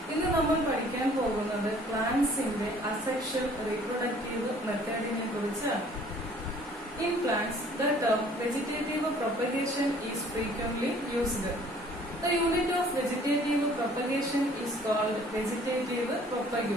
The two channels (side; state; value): both; normal; correlation 0.55